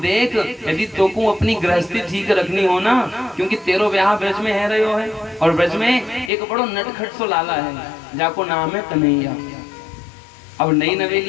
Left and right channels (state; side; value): drops out; right; at 6.3 s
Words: यदि तोको अपनी गृहस्थी ठीक रखनी हो ना, क्योंकि तेरो ब्याह ब्रज में है रहो है, और ब्रज में एक बड़ो नटखट सो लाला है, जाको नाम है कन्हैया। अब नई